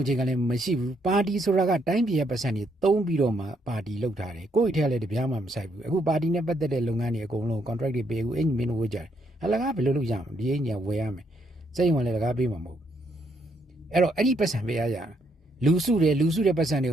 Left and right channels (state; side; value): normal; both; correlation 0.74